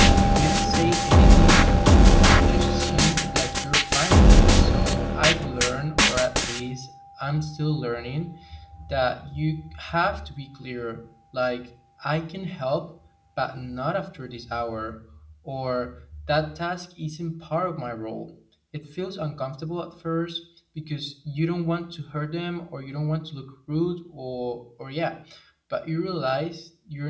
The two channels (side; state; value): both; identical; correlation 1.00